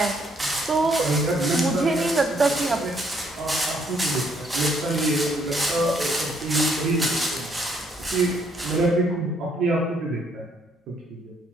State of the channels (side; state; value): both; normal; correlation 0.69